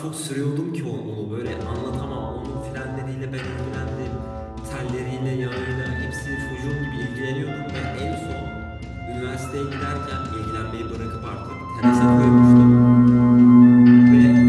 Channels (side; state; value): both; identical; correlation 1.00